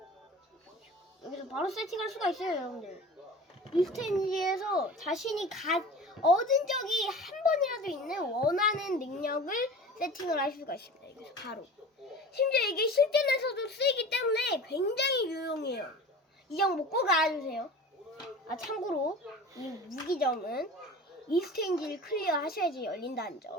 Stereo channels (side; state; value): both; normal; correlation 0.37